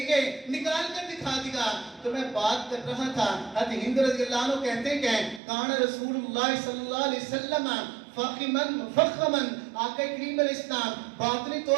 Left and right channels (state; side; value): drops out; left; at 5.4 s